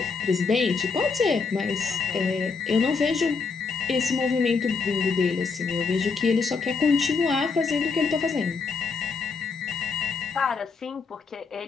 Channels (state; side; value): quieter; right; 4.9 dB